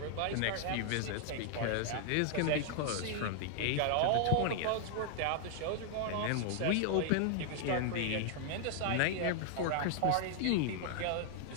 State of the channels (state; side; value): different; both; correlation 0.00